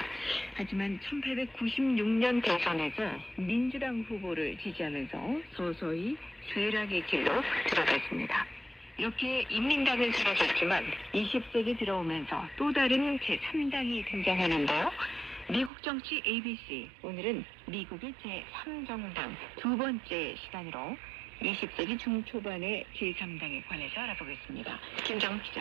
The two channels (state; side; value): drops out; left; at 15.7 s